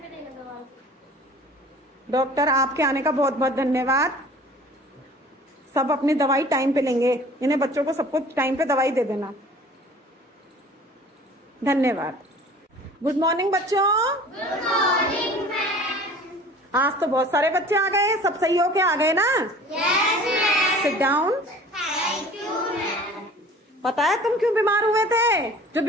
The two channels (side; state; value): both; normal; correlation 0.46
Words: पे देना दवाई। डॉक्टर, आपके आने का बहुत बहुत धन्यवाद। सब अपनी दवाई टाइम पे लेंगे। इन्हें बच्चों को सबको टाइम पे दवाई दे देना। धन्यवाद। गुड मॉर्निंग बच्चों। Good morning ma'am. आज तो बहुत सारे बच्चे आ गए। सब सही होके आ गए ना? Yes ma'am. Sit down. Thank you ma'am. पता है तुम क्यों बीमार हुए थे? जो